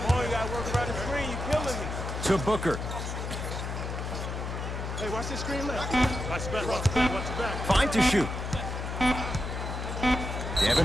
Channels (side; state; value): left; noise; hum, 4 dB below the sound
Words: on, you gotta work around the screen. You killing me. To Booker. Hey, watch the screen left. Watch the back. Fine to shoot.